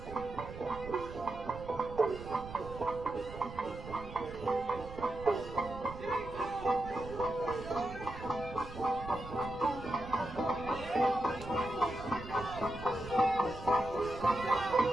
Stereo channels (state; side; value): noise; right; rumble, 13 dB below the sound